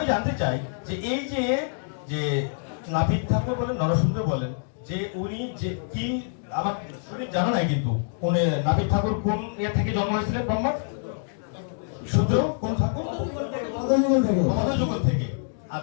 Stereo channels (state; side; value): silent; right; digital silence